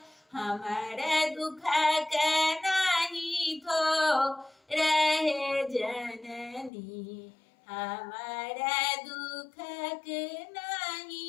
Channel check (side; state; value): right; drops out; at 6.7 s